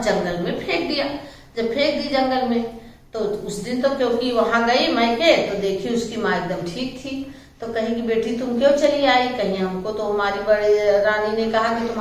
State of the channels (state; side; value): identical; both; correlation 1.00